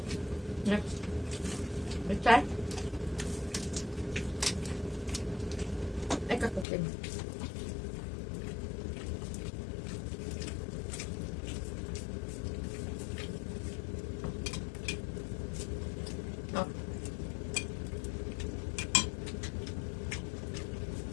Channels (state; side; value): drops out; right; at 6.7 s